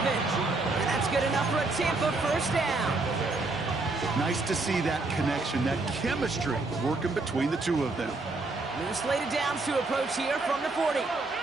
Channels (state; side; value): quieter; left; 3.4 dB